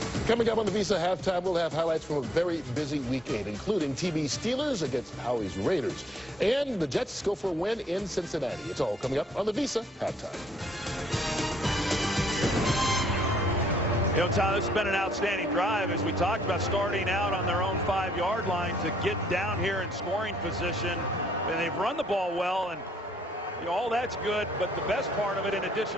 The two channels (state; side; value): normal; both; correlation 0.67